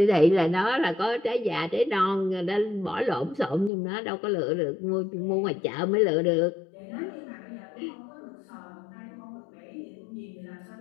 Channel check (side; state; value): right; drops out; at 3.7 s